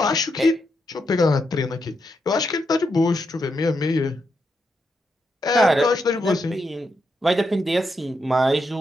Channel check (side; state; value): both; normal; correlation 0.82